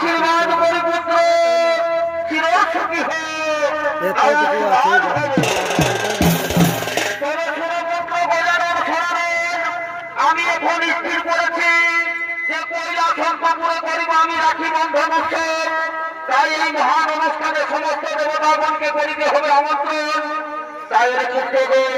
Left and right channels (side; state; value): both; identical; correlation 1.00